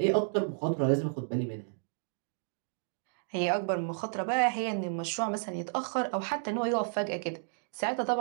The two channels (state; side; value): silent; left; digital silence